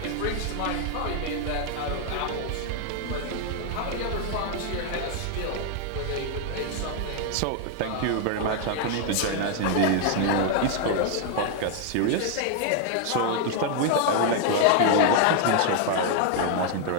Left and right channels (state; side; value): different; both; correlation 0.00